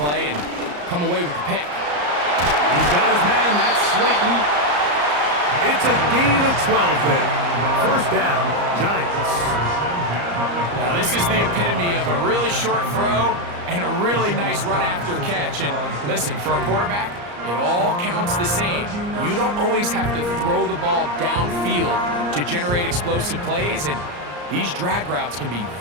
and come away with the pick. He's got his man. That's Slayton. It's a gain of 12 there. First down, Giants. Now, this is the epitome of a really short throw and a really nice run after catch. And listen, for a quarterback, it all counts the same. You don't always have to throw the ball downfield to generate explosive plays, and these drag routes can be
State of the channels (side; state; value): left; late; 34 ms